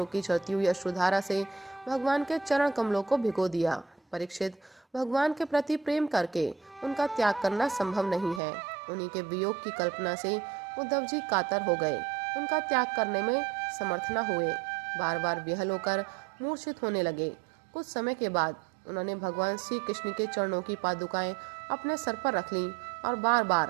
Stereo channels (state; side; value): drops out; left; at 8.4 s